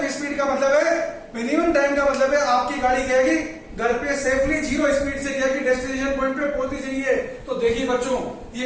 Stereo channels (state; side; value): identical; both; correlation 1.00